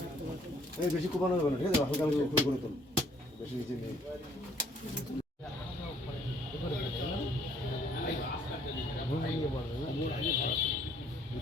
এই বেশি কোপানো যাবে না, ঠিক আছে? হালকা হালকা করে তোল, বেশি নিচে নেই।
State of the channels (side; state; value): both; normal; correlation 0.62